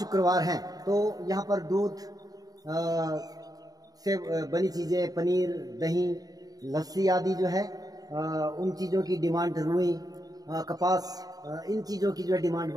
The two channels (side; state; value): left; late; 0.18 ms